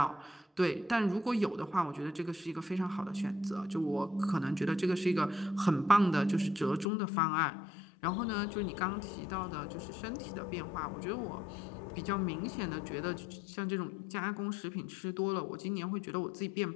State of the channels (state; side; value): drops out; right; at 6.9 s